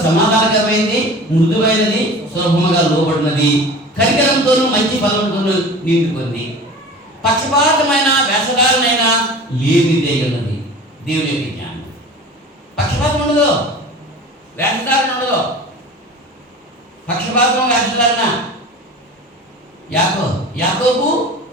సమాధానకరమైనది, మృదువైనది, సులభముగా లోబడినది, కనికరంతోనూ మంచి ఫలంతోనూ నిండుకుంది, పక్షపాతమైన వేషధారణైన లేనిదే ఉన్నది. దేవుని యొక్క జ్ఞానం పక్షపాతం ఉండదు, వేషధారణ ఉండదు. పక్షపాతం, వేషధారణ యాకోబు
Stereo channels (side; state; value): both; normal; correlation 0.38